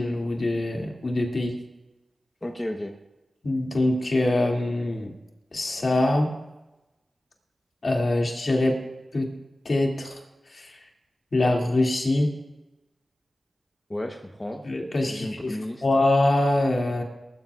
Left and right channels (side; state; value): both; normal; correlation 0.96